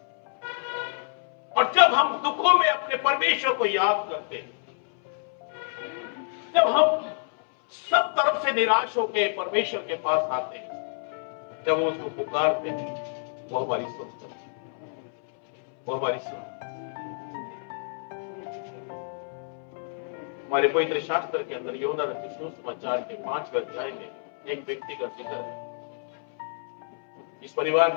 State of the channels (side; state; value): right; silent; 60 dB below the other